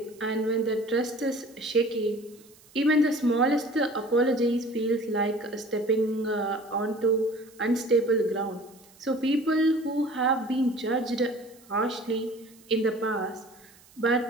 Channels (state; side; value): noise; right; hiss, 26 dB below the sound